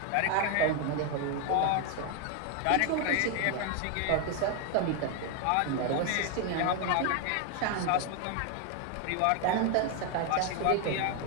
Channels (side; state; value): both; different; correlation 0.01